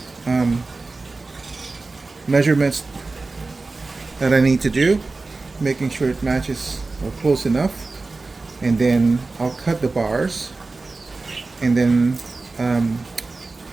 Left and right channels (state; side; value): quieter; left; 3.6 dB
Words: measurements that I need to do, making sure it matches or close enough, and then I'll cut the bars, and then